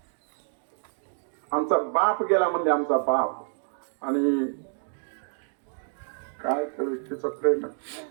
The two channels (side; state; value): left; silent; digital silence